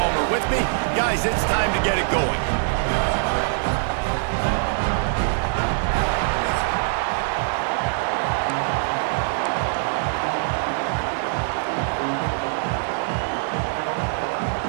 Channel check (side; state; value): left; silent; digital silence